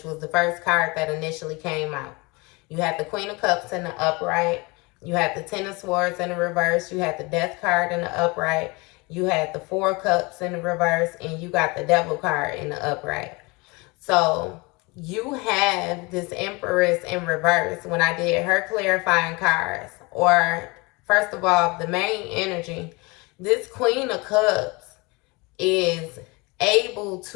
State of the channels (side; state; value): right; quieter; 26.2 dB